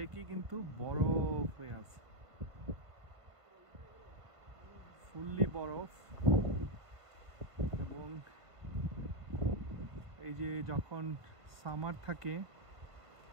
কিন্তু বরফ হয়ে আছে, ফুললি বরফ। এবং এই যে যখন সামার থাকে,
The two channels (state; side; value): late; left; 1.5 ms